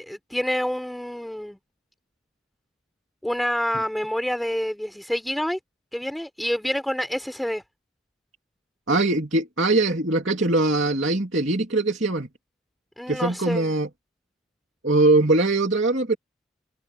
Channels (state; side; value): normal; both; correlation 0.42